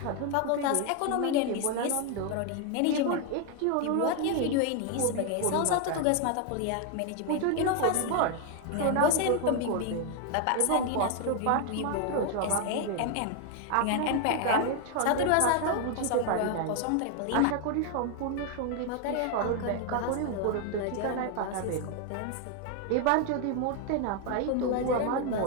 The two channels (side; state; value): both; different; correlation 0.01